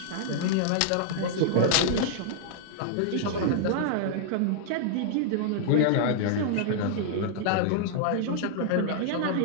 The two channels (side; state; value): both; different; correlation -0.01